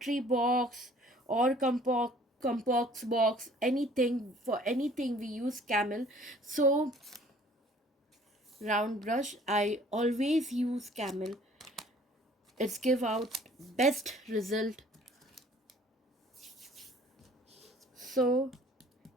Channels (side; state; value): both; normal; correlation 0.54